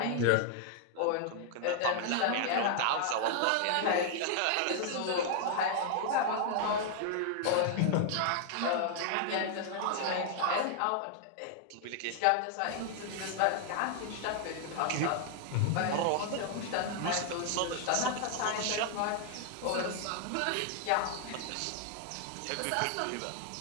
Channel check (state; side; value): different; both; correlation 0.00